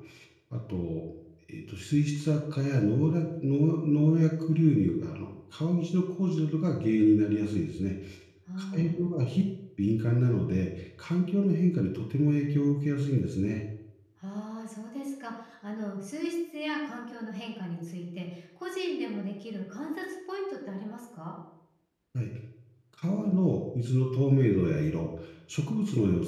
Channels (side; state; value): both; identical; correlation 1.00